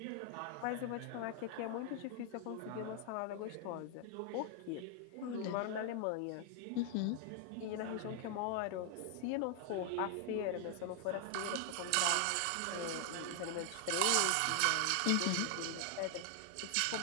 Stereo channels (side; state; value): both; different; correlation 0.00